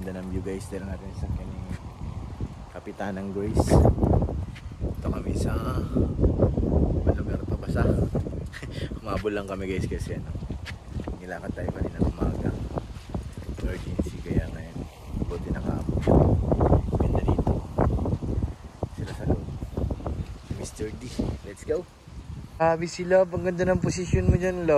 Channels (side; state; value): both; identical; correlation 1.00